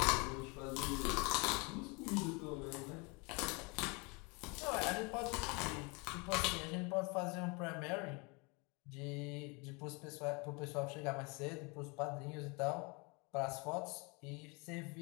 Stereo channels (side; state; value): right; quieter; 29.7 dB